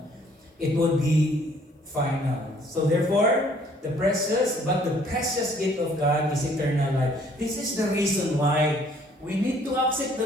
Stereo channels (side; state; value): both; normal; correlation 0.60